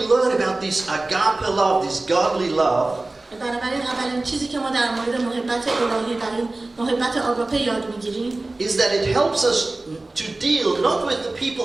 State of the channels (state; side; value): quieter; left; 3.0 dB